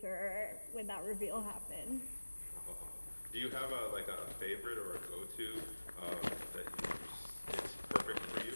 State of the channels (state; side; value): inverted; both; correlation -1.00